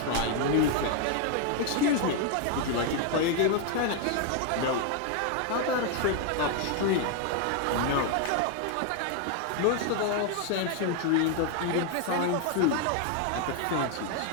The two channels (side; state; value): both; different; correlation 0.01